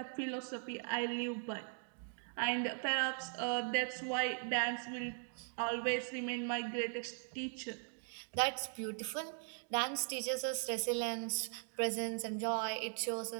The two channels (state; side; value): silent; left; 51 dB below the other